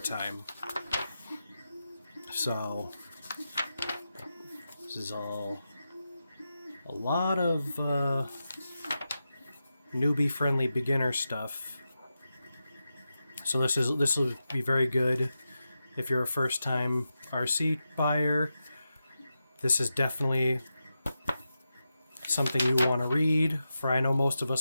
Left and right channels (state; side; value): inverted; both; correlation -0.90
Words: So this is all a lot of newbie friendly beginner stuff. So this will be very good if you're a first time RC buyer. This is definitely something you want to read. For I know most of